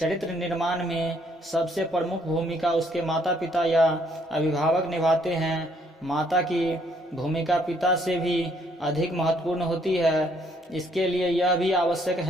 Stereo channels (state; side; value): normal; both; correlation 0.67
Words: निर्माण में सबसे प्रमुख भूमिका उसके माता पिता या अभिभावक निभाते हैं। माता की भूमिका पिता से भी अधिक महत्वपूर्ण होती है। इसके लिए यह भी आवश्यक